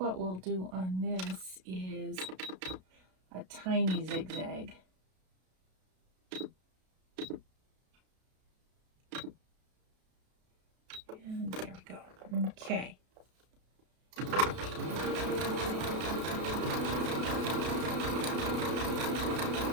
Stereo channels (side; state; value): left; late; 32 ms